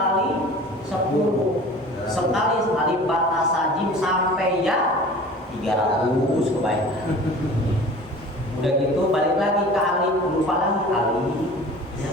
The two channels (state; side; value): normal; both; correlation 0.42